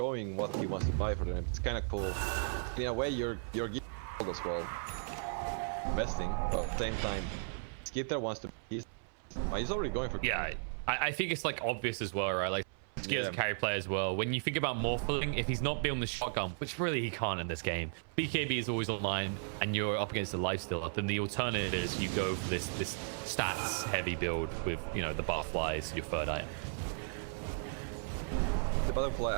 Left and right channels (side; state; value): left; silent; 54 dB below the other